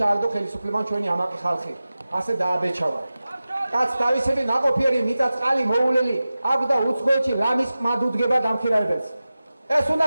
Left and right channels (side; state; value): both; inverted; correlation -0.95